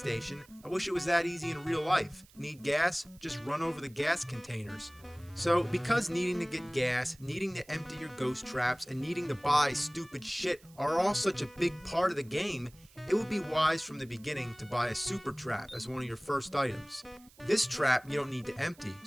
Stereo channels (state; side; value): noise; right; hiss, 26 dB below the sound